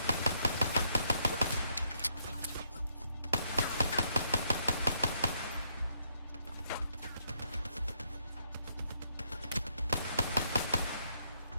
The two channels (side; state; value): both; inverted; correlation -0.74